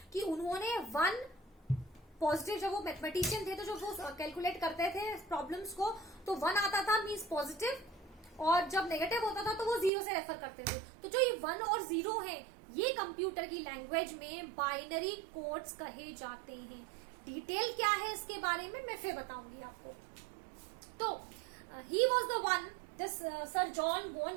कि उन्होंने वन पॉजिटिव, जब वो मैथमेटिशियन थे तो जब वो कैलकुलेट करते थे प्रॉब्लम्स को तो वन आता था मीन्स पॉजिटिव, और जब नेगेटिव होता था तो वो जीरो से रेफर करते थे. तो जो ये वन और जीरो है ये कंप्यूटर की लैंग्वेज में बाइनरी कोड्स कहे जाते हैं. डिटेल क्या है इसके बारे में मैं फिर बताऊंगी आपको. तो he was the one, this sir John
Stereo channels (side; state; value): left; drops out; at 9.9 s